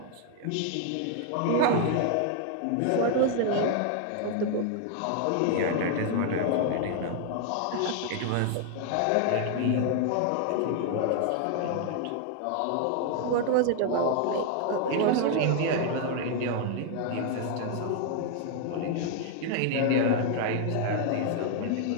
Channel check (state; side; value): different; both; correlation 0.00